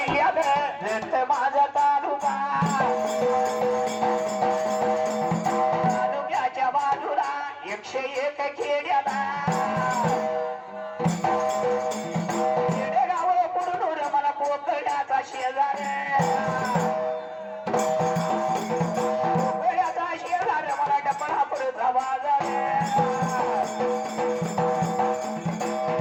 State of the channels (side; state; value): both; identical; correlation 1.00